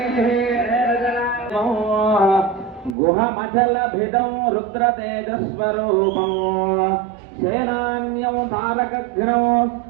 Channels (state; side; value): drops out; left; at 3.0 s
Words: గుహమచల భిదం రుద్ర తేజస్వరూపం సేనాన్యం తారకఘ్నం